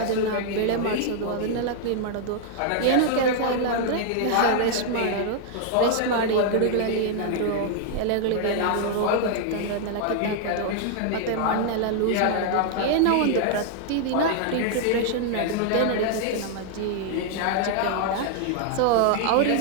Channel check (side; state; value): both; different; correlation 0.00